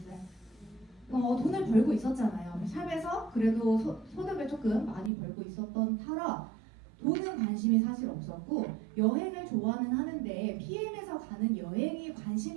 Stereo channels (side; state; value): left; drops out; at 5.1 s